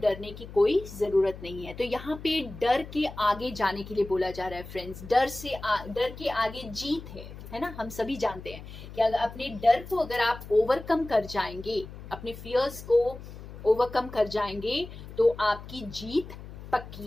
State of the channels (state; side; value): noise; left; hum, 14 dB below the sound